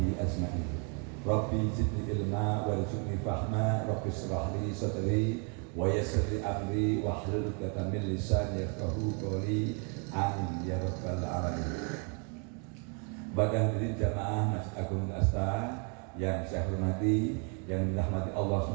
ajma'in. Rabbi zidni ilma warzuqni fahma, Rabbi shrah li sadri wa yassir li amri wahlul 'uqdatam min lisani yafqahu qawli. Amin ya rabbal alamin. Pada hadirin jamaah Masjid Agung Al-Asta yang saya hormati, yang dirahmati Allah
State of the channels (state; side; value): quieter; left; 37.8 dB